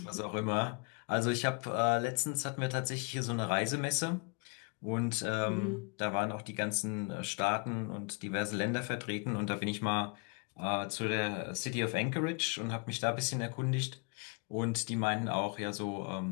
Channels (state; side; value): quieter; right; 35.3 dB